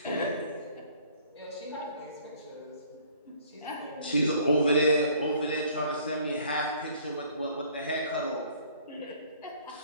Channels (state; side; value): inverted; both; correlation -0.57